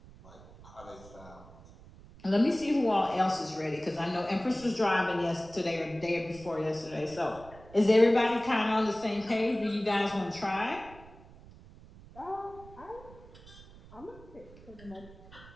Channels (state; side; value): noise; right; rumble, 20 dB below the sound